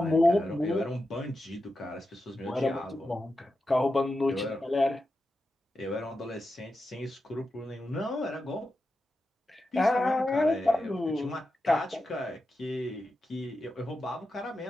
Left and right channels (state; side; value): normal; both; correlation 0.90